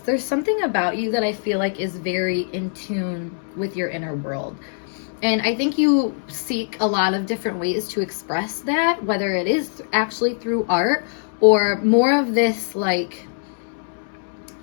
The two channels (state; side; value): silent; right; 64 dB below the other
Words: something about you that I feel like is very in tune with your inner world. And I think you seek a lot of different ways to express that, whether it is actually through art or more of this, like,